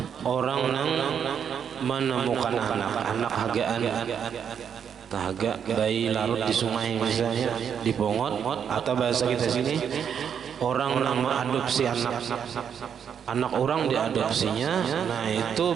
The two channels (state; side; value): quieter; left; 7.9 dB